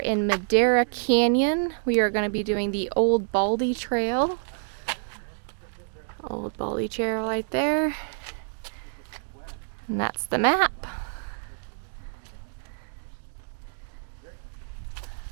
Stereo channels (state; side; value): silent; left; digital silence